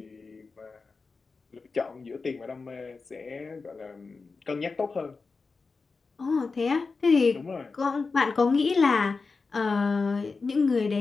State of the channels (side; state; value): right; quieter; 4.3 dB